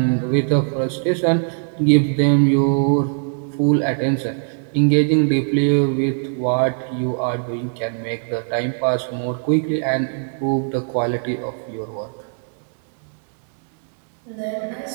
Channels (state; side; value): silent; left; digital silence